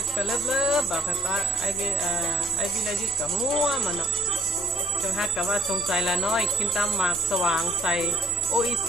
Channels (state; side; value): normal; both; correlation 0.61